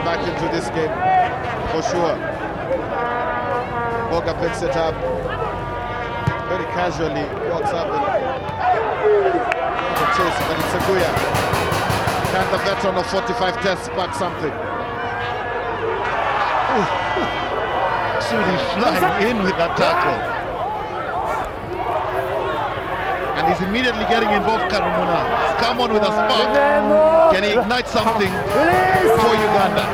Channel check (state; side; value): identical; both; correlation 1.00